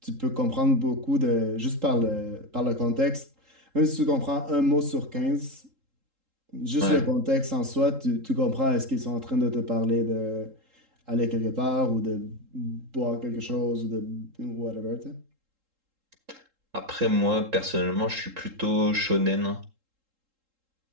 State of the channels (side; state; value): left; late; 3.7 ms